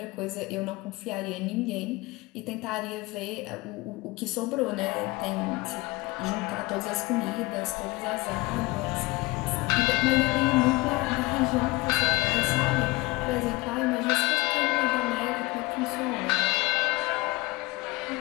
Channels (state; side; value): quieter; right; 22.3 dB